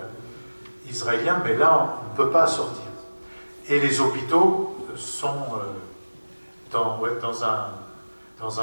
israélien, mais là, on ne peut pas sortir. Et les hôpitaux sont dans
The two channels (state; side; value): inverted; both; correlation -1.00